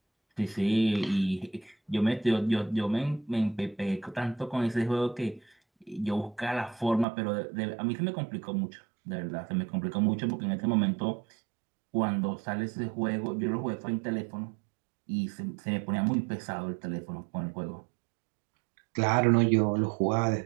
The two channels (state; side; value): drops out; left; at 7.1 s